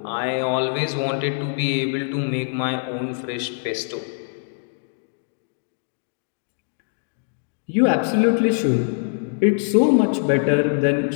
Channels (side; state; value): right; silent; digital silence